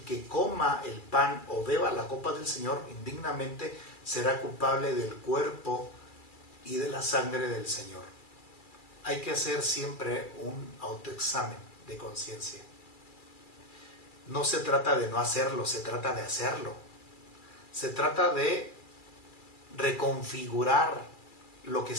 que coma el pan o beba la copa del Señor indignamente será culpable del cuerpo y de la sangre del Señor. Hay que hacer siempre un autoexamen de conciencia. No se trata de no hacerlo, se trata de hacerlo. Se trata de reconfigurar lo que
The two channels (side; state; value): right; late; 2.3 ms